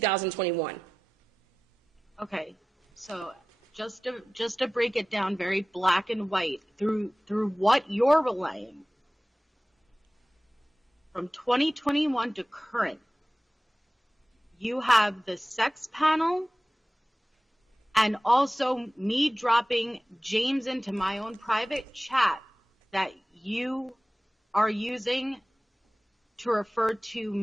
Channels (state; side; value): normal; both; correlation 0.96